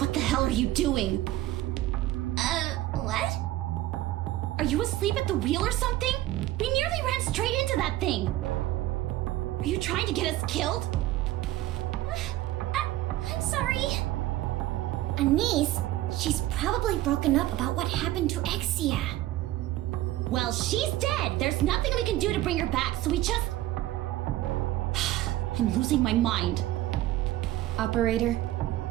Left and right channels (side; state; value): left; quieter; 15.5 dB